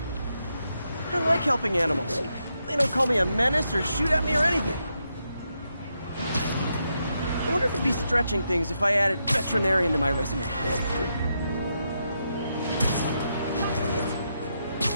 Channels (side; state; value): both; inverted; correlation -0.83